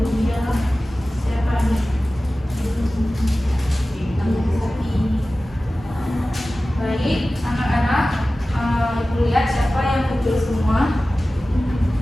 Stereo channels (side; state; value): both; normal; correlation 0.96